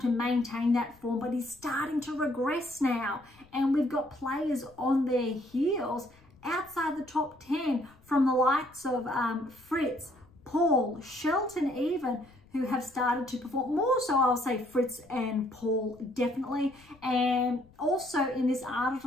maintain that form, but he's starting to regress now. And we've got players on their heels outside the top 10 from the likes of Fritz, Paul, Shelton even, who have started to perform. More so, I'll say Fritz and Paul, definitely. And also in this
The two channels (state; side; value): noise; left; rumble, 27 dB below the sound